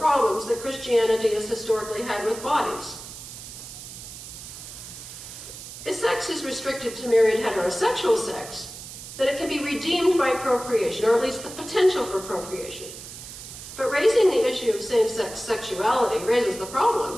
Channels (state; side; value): noise; right; hiss, 12 dB below the sound